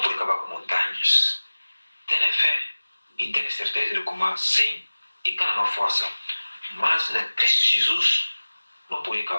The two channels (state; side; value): inverted; both; correlation -1.00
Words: pode acabar com montanhas. Tenha fé e tenha certeza de como sim e cada força. Mas na Cristo Jesus não pode